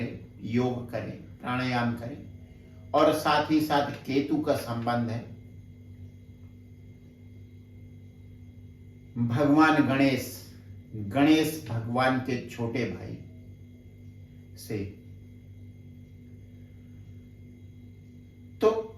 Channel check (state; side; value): identical; both; correlation 1.00